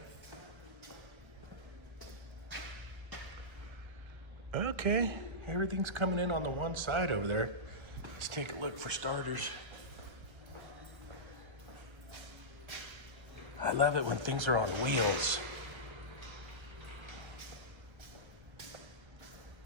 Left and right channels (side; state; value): left; late; 1.3 ms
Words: Okay, everything's coming in on the one side over there. Let's take a look for starters. I love it when things are on wheels.